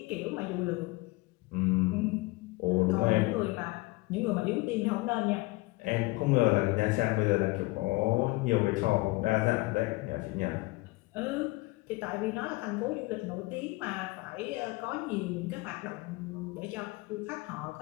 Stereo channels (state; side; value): quieter; right; 23.0 dB